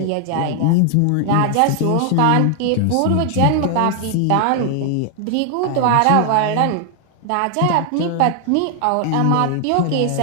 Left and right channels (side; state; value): both; different; correlation 0.00